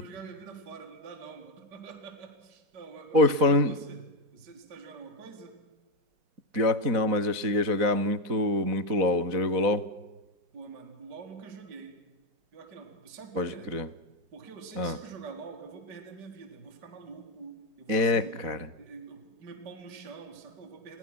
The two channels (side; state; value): left; late; 4.1 ms